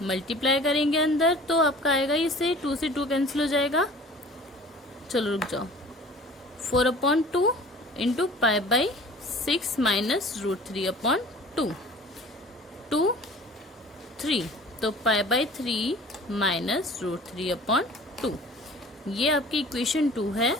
मल्टीप्लाई करेंगे अंदर तो आपका आएगा इसे 2 से 2 कैंसिल हो जाएगा। चलो रुक जाओ, 4/2 इंटू पाई बाई 6 माइनस √3/2, 2 3, तो पाई बाई 3 माइनस √3/2। ये आपकी इक्वेशन 2 है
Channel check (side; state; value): both; normal; correlation 0.45